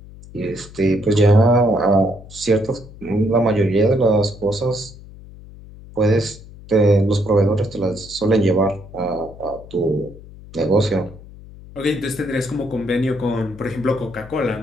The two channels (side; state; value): left; noise; hum, 18 dB below the sound